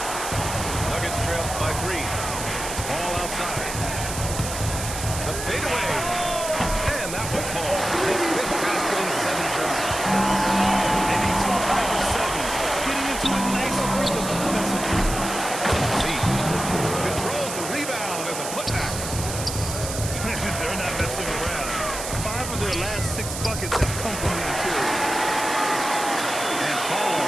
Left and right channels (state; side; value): noise; right; hiss, 7 dB below the sound